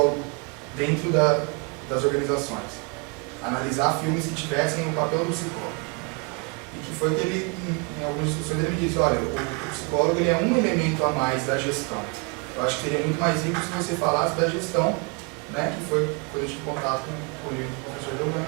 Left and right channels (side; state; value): left; quieter; 32.1 dB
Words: dentro das organizações. Analisar filmes que tivessem o papel do psicólogo. e que foi que ele, em algumas discussões, ele me disse, olha, o psicólogo ele é um elemento a mais da gestão. Eu acho que seria muito mais rico se você falasse da gestão, né, que foi quando eu tive contato com o livro do